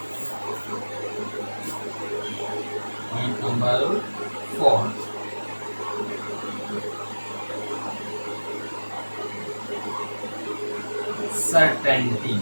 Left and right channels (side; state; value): both; inverted; correlation -1.00